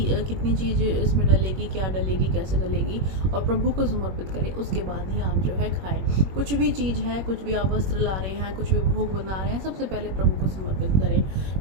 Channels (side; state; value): left; late; 21 ms